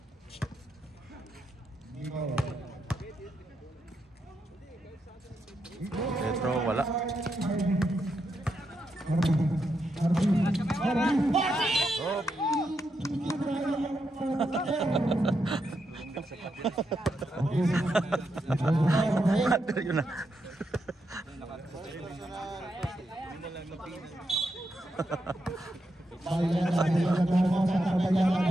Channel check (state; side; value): normal; both; correlation 0.83